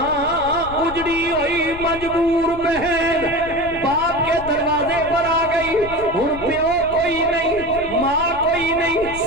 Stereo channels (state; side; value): noise; left; rumble, 14 dB below the sound